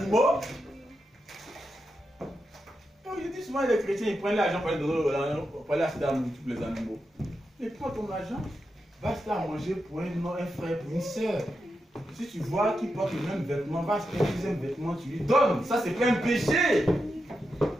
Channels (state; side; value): normal; both; correlation 0.87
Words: Je dis souvent les chrétiens, ils prennent l'argent pour aller acheter à nourrir tous les animaux. Mais prends ton argent, va acheter à manger pour un frère, pour une soeur. Si tu vois qu'il porte le même vêtement, va acheter un deuxième vêtement, tu lui donnes. Ça, c'est pas un péché.